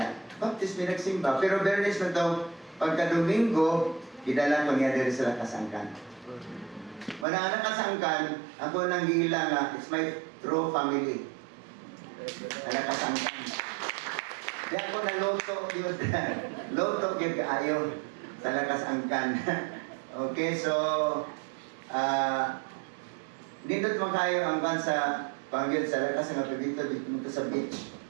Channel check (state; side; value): drops out; left; at 7.2 s